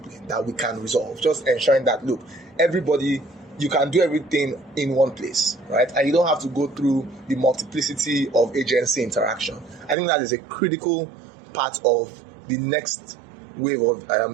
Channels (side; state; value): left; drops out; at 10.0 s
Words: that we can resolve. Just ensuring that, look, everybody, you can do everything in one place, right? And you don't have to go through the multiplicity of agency interaction. I think that is a critical part of the next wave of